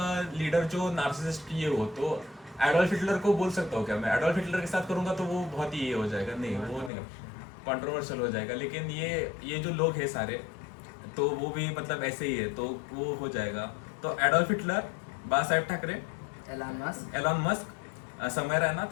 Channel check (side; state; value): right; drops out; at 6.9 s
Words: लीडर जो नार्सिसिस्ट ये हो, तो एडोल्फ हिटलर को बोल सकता हूँ क्या मैं? एडोल्फ हिटलर के साथ करूंगा तो वो बहुत ही ये हो जाएगा, नहीं वो नहीं कंट्रोवर्शियल हो जाएगा। लेकिन ये जो लोग हैं सारे, तो वो भी मतलब ऐसे ही है, तो वो हो जाएगा। तो एडोल्फ हिटलर, बाला साहेब ठाकरे, एलॉन मस्क, समय रैना,